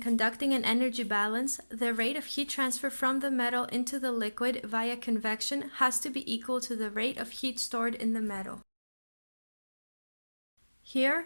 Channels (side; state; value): both; inverted; correlation -1.00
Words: an energy balance, the rate of heat transfer from the metal into the liquid via convection has to be equal to the rate of heat stored in the metal.